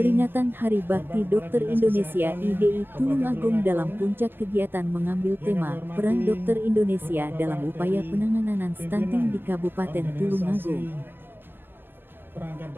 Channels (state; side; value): late; left; 0.098 ms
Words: Hari Bakti Dokter Indonesia IDI Tulungagung dalam puncak kegiatan mengambil tema Peran Dokter Indonesia dalam upaya penanganan stunting di Kabupaten Tulungagung. Perangkat